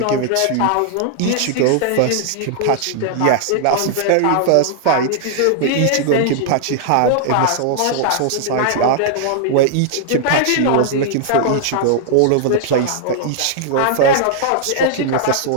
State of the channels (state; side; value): different; both; correlation -0.01